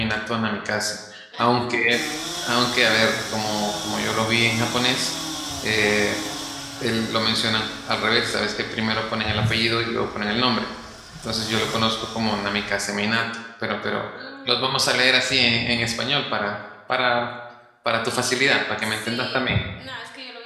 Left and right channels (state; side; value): identical; both; correlation 1.00